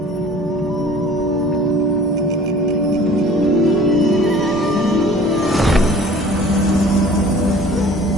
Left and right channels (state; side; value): normal; both; correlation 0.47